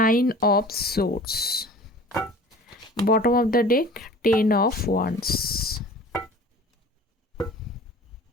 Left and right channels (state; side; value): normal; both; correlation 0.43